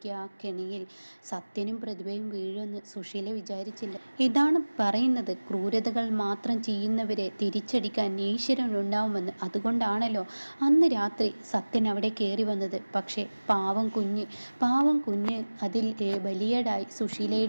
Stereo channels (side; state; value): both; inverted; correlation -1.00